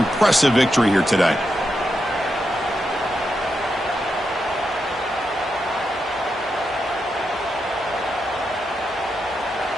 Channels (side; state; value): both; normal; correlation 0.85